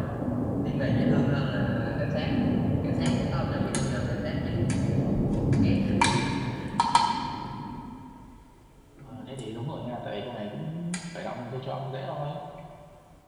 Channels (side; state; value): both; identical; correlation 1.00